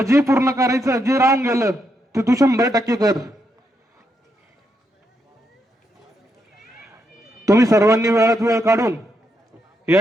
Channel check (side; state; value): both; normal; correlation 0.80